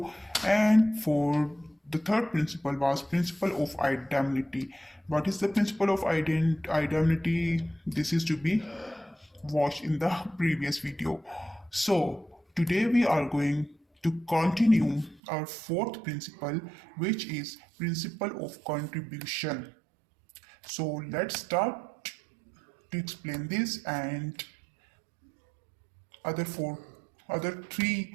And for the third principle was principle of indemnity. What is the principle of indemnity? This is to be watched in the previous video. So today we are going to continue our fourth principle, which is principle of contribution. So let's start to explain this and other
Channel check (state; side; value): drops out; left; at 15.2 s